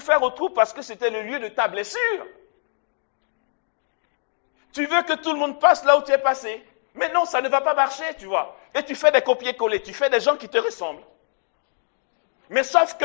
au trou parce que c'était le lieu de ta blessure. Tu veux que tout le monde passe là où tu es passé. Mais non, ça ne va pas marcher, tu vois. Et tu fais des copier-coller, tu fais des gens qui te ressemblent. Mais sauf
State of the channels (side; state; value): right; silent; digital silence